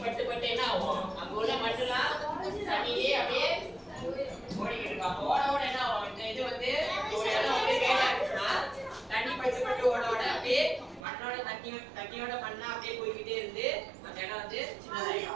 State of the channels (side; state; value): left; drops out; at 11.1 s